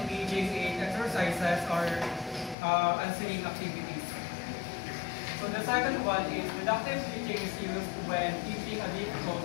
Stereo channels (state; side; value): drops out; right; at 2.6 s